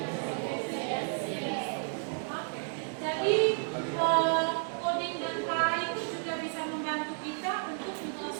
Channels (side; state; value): left; silent; 56 dB below the other